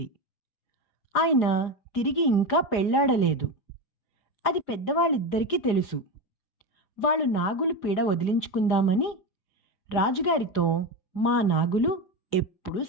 ఆయన తిరిగి ఇంకా పెళ్లాడలేదు. అది పెద్దవాళ్ళిద్దరికీ తెలుసు. వాళ్ళు నాగులు పీడ వదిలించుకుందామని రాజుగారితో, మా నాగులు ఎప్పుడూ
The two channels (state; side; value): late; right; 4.9 ms